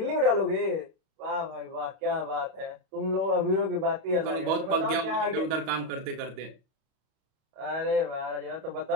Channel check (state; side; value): late; left; 31 ms